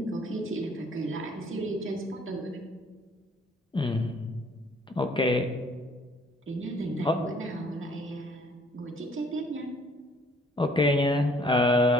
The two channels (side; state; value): both; normal; correlation 0.59